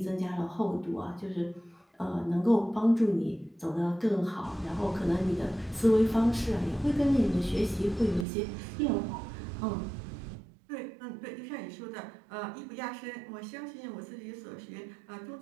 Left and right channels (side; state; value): left; drops out; at 8.2 s